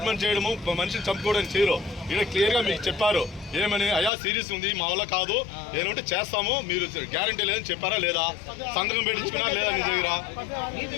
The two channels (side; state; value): right; drops out; at 4.1 s